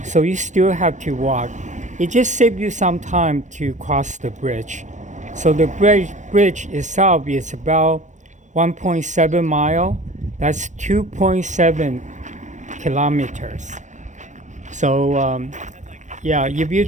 so you still have to walk. It just saves you some time to cross the bridge. So the bridge itself is about 1.7 mile. That's 2.7 kilometers. So yeah, if you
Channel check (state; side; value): late; left; 0.35 ms